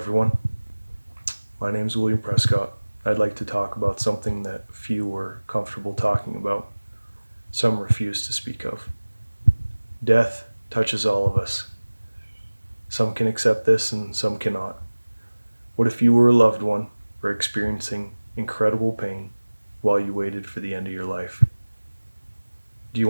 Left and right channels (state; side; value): inverted; both; correlation -1.00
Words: My name is William Prescott. I'd like to talk about something that few are comfortable talking about. Some refuse to speak of. Death touches all of us. Some can accept this and some cannot. What if you were a loved one or experiencing incredible pain while you waited for the end of your life? Do you